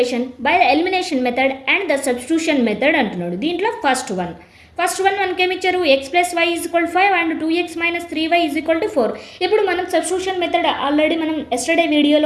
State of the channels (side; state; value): both; identical; correlation 1.00